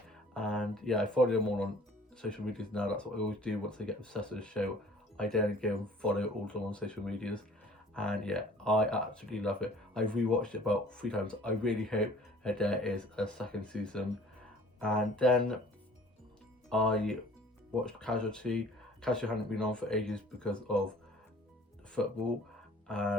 and yeah, I follow them all on social medias now. That's what I always do once I get obsessed with a show. I then go and follow all of them on social medias, and yeah, I absolutely love it. I've rewatched it about 3 times. I really hope that there is a second season. And then I watched Casualty. Casualty hadn't been on for ages because of football,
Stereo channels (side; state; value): both; normal; correlation 0.51